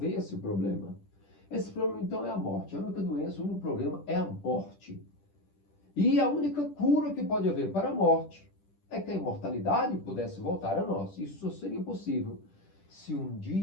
esse problema. Esse problema, então, é a morte. A única doença, o único problema é a morte. E a única cura que pode haver para a morte é que a imortalidade pudesse voltar a nós. Isso só seria possível se um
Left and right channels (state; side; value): late; right; 10 ms